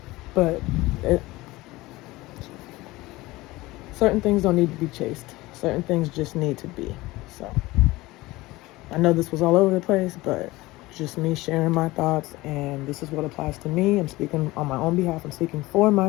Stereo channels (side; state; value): right; quieter; 19.8 dB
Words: But certain things don't need to be chased. Certain things just need to be. So, I know this was all over the place, but just me sharing my thoughts, and this is what applies to me. I'm speaking on my own behalf. I'm speaking for